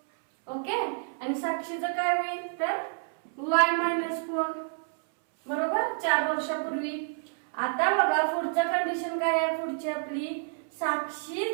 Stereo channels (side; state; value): left; silent; 59 dB below the other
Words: ओके. आणि साक्षीचं काय होईल, तर y -4, बरोबर, 4 वर्षापूर्वी. आता बघा पुढचं कंडिशन काय आहे, पुढची आपली,